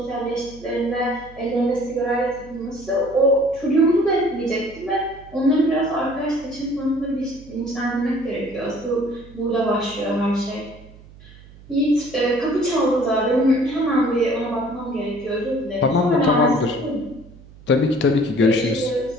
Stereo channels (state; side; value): noise; right; hum, 21 dB below the sound